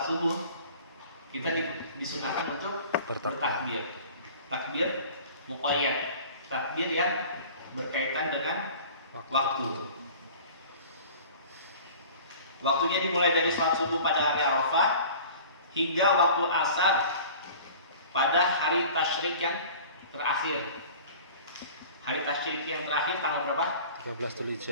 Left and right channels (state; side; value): inverted; both; correlation -0.44